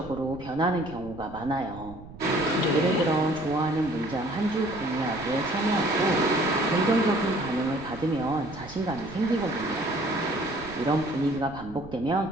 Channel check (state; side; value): noise; right; rumble, 17 dB below the sound